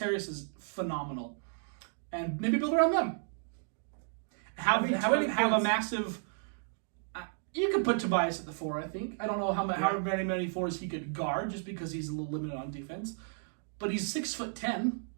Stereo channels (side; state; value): left; silent; digital silence